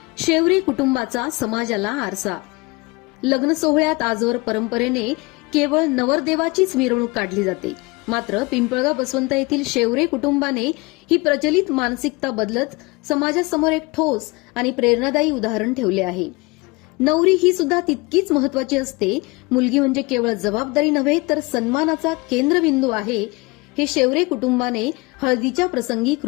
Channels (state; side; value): quieter; right; 25.3 dB